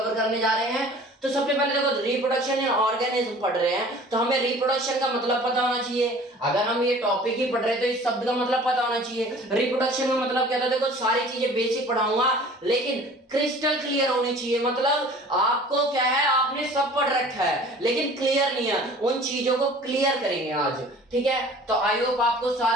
करने जा रहे हैं। तो सबसे पहले देखो, रिप्रोडक्शन इन ऑर्गेनिज्म पढ़ रहे हैं तो हमें रिप्रोडक्शन का मतलब पता होना चाहिए। अगर हम ये टॉपिक ही पढ़ रहे हैं तो इस शब्द का मतलब पता होना चाहिए। रिप्रोडक्शन का मतलब क्या था, देखो सारी चीजें बेसिक पढ़ाऊंगा लेकिन क्रिस्टल क्लियर होनी चाहिए। मतलब आपको क्या है, आपने सब पढ़ रखा है लेकिन क्लियर नहीं है, उन चीजों को क्लियर करेंगे आज। ठीक है, तो आई होप आपको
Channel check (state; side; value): normal; both; correlation 0.47